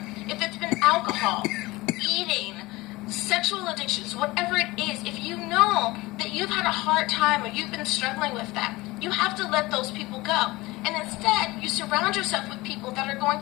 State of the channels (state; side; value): quieter; right; 20.7 dB